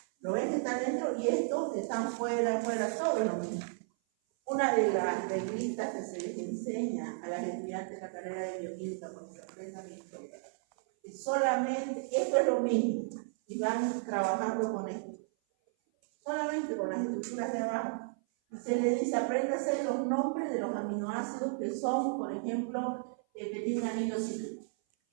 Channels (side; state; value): left; silent; 55 dB below the other